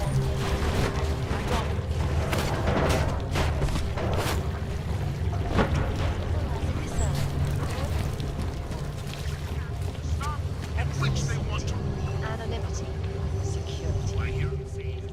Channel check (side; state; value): both; identical; correlation 1.00